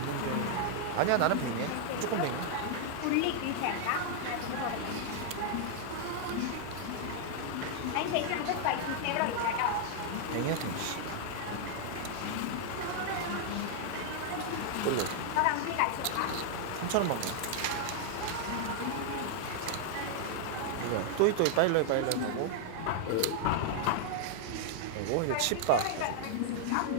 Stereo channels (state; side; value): different; both; correlation 0.00